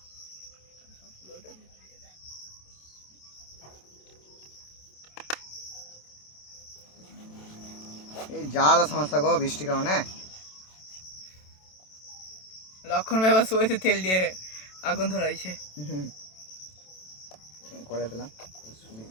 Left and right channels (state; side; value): late; right; 27 ms